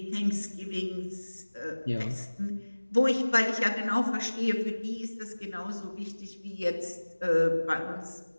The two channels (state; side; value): inverted; both; correlation -1.00